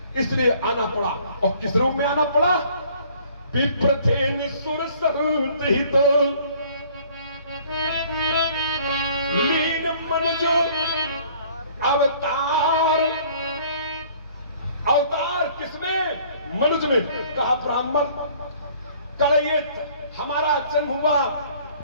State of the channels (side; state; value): both; inverted; correlation -0.56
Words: इसलिए आना पड़ा। और किस रूप में आना पड़ा? विप्र थे निसुर सहुत ही तो लीन मनुज अवतार। अवतार किसमें? मनुज में। कहा ब्राह्मण करिए, हमारा जन्म हुआ